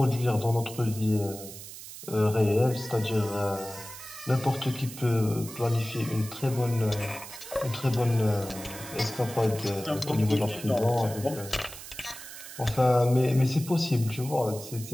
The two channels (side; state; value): right; noise; hiss, 13 dB below the sound